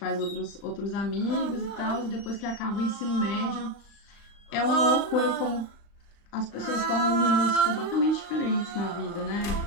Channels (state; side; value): late; right; 35 ms